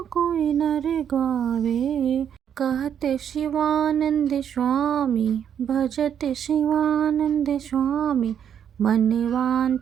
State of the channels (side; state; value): left; quieter; 8.8 dB